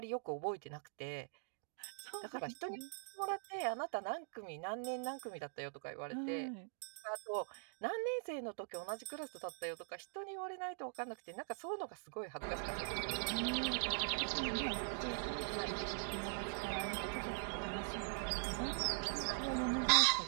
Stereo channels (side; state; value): left; silent; digital silence